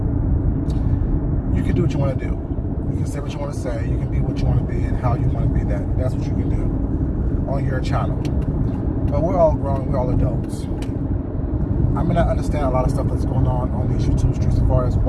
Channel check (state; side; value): identical; both; correlation 1.00